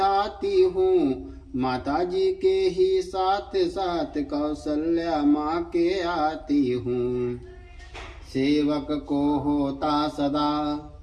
हूँ। माता जी के ही साथ साथ कौशल्या माँ के आती हूँ। सेवक को होता सदा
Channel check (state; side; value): identical; both; correlation 1.00